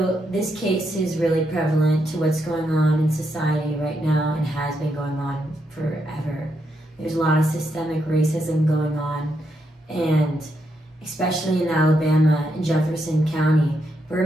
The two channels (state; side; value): normal; both; correlation 0.80